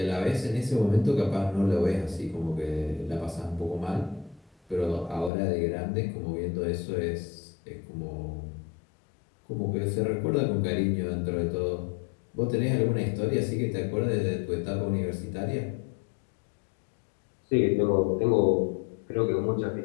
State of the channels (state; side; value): drops out; right; at 5.3 s